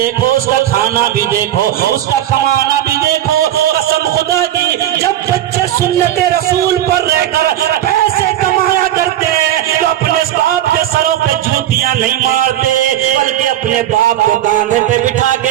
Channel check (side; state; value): left; quieter; 12.3 dB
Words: اس کا کھانا بھی دیکھو، اس کا کمانا بھی دیکھو۔ قسم خدا کی جب بچے سنت رسول پر رہ کر پیسے کمایا کرتے تو اپنے باپ کے سروں پہ جوتیاں نہیں مارتے، بلکہ اپنے باپ کو کاندھے پہ بٹھا